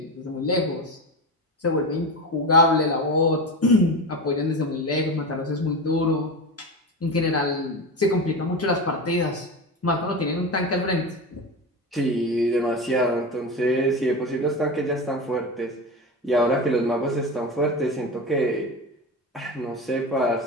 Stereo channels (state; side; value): normal; both; correlation 0.23